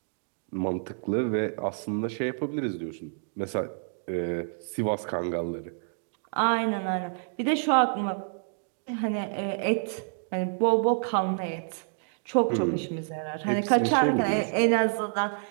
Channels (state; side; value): silent; left; digital silence